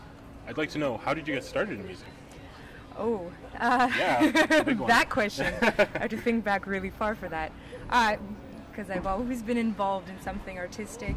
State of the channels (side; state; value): both; identical; correlation 1.00